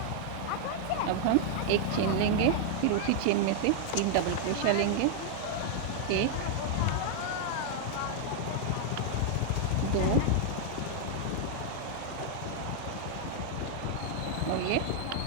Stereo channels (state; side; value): different; both; correlation 0.00